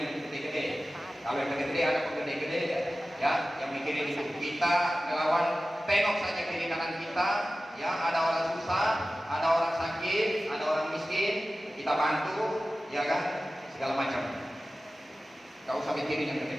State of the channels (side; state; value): both; normal; correlation 0.95